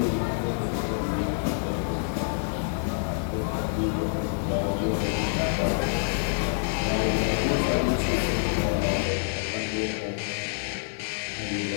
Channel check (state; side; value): silent; right; digital silence